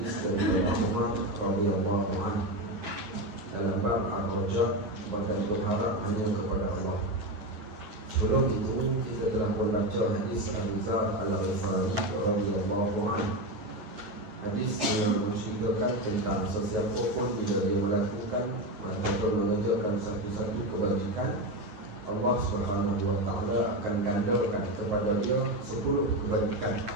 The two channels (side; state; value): left; late; 9.8 ms